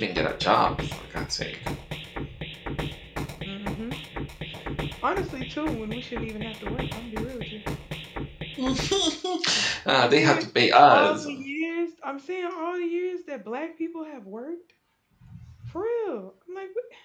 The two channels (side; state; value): both; identical; correlation 1.00